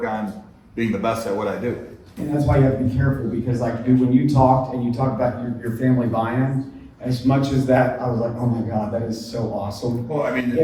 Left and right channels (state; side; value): identical; both; correlation 1.00